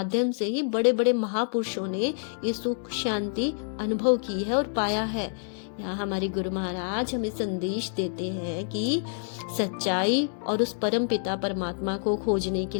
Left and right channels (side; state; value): right; silent; digital silence